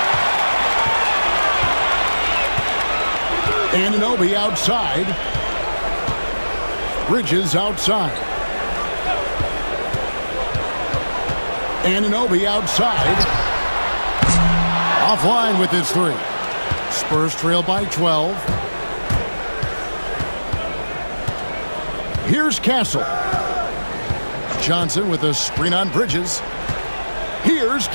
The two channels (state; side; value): inverted; both; correlation -1.00